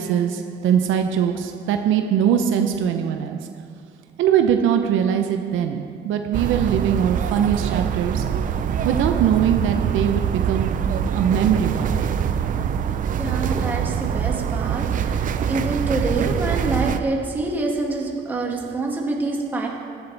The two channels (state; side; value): quieter; left; 7.3 dB